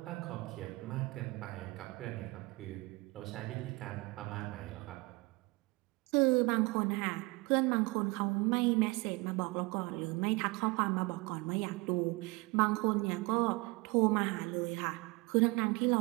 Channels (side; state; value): left; quieter; 25.3 dB